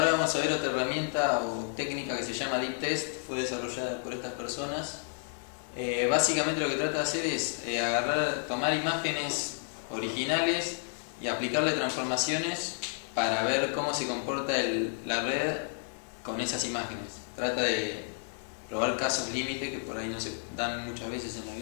vamos a ver otra herramienta o técnica que se llama Deep Test, fue desarrollada por estas personas. Básicamente lo que trata de hacer es tomar imágenes originales y aplicarle transformaciones para ver cómo se comporta la red con esas imágenes. Trata de probar casos límite que por ahí no se dan muchas veces en la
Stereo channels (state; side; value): silent; right; 57 dB below the other